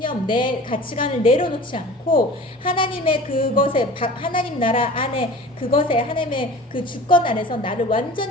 내 가치관을 내려놓지 않고 하나님의 그것에, 하나님 나라 안에 그것에, 하나님의 그 주권 안에서 나를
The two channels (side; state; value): both; normal; correlation 0.40